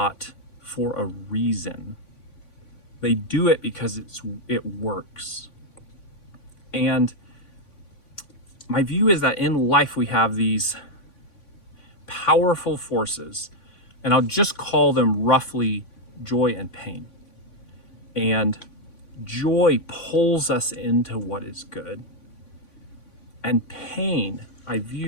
for a reason. They do it because it works. And my view is that in life we have these powerful forces, and I'll just call them roughly joy and pain. And joy pulls us into what is good. And pain I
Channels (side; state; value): right; late; 3.5 ms